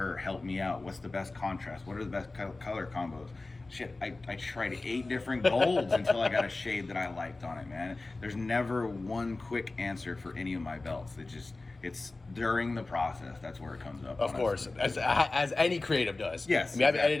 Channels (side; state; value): right; quieter; 3.3 dB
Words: help me out. What's the best contrast? What are the best color combos? Shit, I tried 8 different golds until I got a shade that I liked on it, man. There's never one quick answer for any of my belts. It's during the process. That's where it comes up. Of course, as any creative does. Yes. I mean, I've been